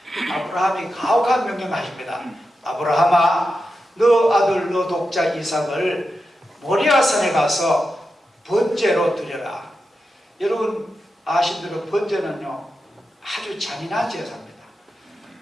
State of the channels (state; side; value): normal; both; correlation 0.89